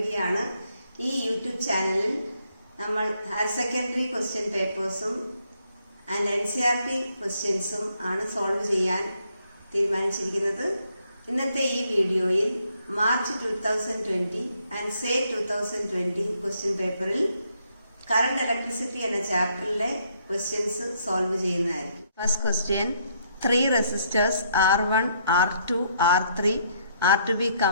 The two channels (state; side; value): inverted; both; correlation -0.71